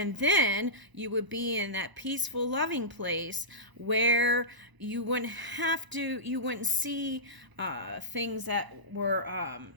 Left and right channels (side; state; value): left; late; 1.0 ms